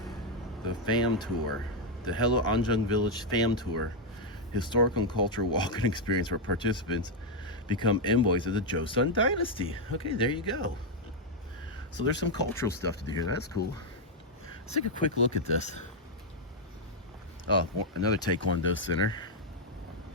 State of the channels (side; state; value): both; normal; correlation 0.00